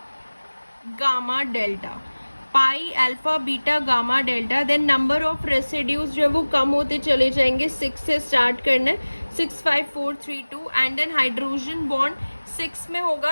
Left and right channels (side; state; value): both; inverted; correlation -1.00